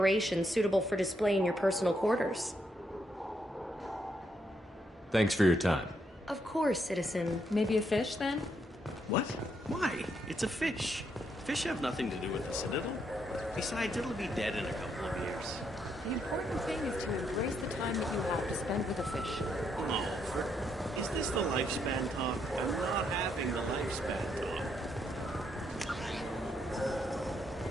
suitable for display in your personal quarters. Thanks for your time. Of course, citizen. Maybe a fish, then? What? Why? It's a fish. Fish have nothing to do with the Citadel. Besides, it'll be dead in a couple of years. The important thing is to embrace the time that you have to spend with a fish. Oh, is this the lifespan talk? I'm not having the lifespan talk.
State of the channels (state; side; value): normal; both; correlation 0.76